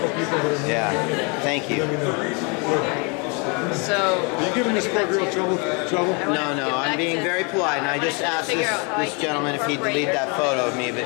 Yeah, thank you. So, Are you giving this poor girl trouble? No, I'm being very polite, and I just asked this gentleman if he'd delete that photo of me, but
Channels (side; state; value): right; quieter; 32.7 dB